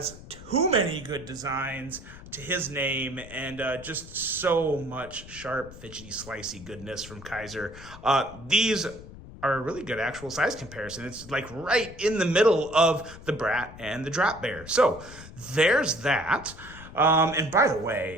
too many good designs to his name, and just so much sharp, fidgety, slicey goodness from Kizer. These are a really good actual size comparison. It's like right in the middle of the Brat and the Drop Bear. So there's that. And by the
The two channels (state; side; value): noise; left; rumble, 16 dB below the sound